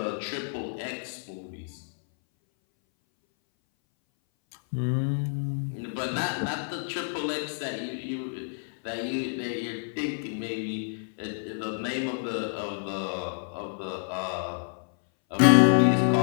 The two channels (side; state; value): right; silent; 59 dB below the other